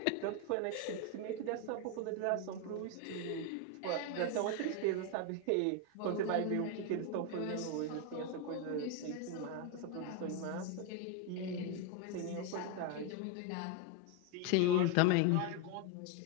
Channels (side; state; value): both; different; correlation 0.01